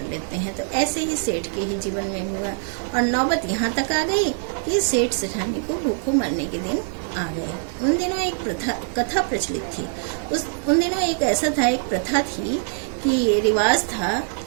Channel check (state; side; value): silent; left; digital silence